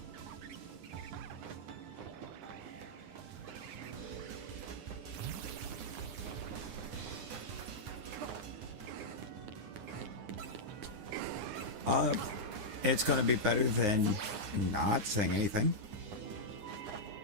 It's gonna be better than not saying anything.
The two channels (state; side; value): late; left; 9.7 ms